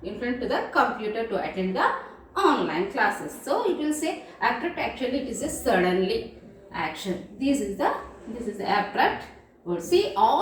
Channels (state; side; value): identical; both; correlation 1.00